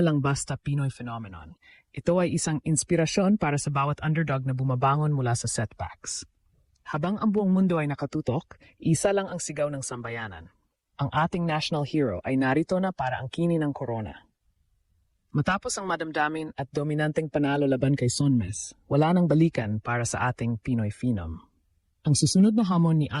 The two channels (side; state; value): both; identical; correlation 1.00